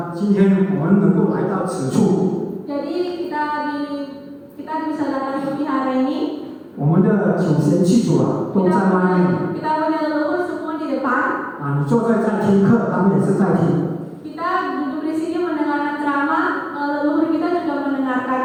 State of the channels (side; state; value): both; identical; correlation 1.00